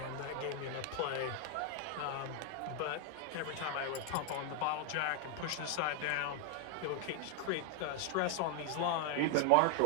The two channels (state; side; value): different; both; correlation 0.00